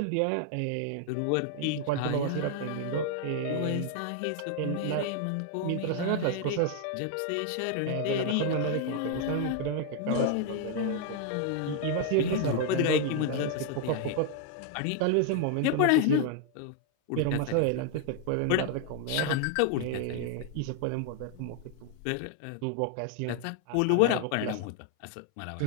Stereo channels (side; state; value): both; different; correlation 0.00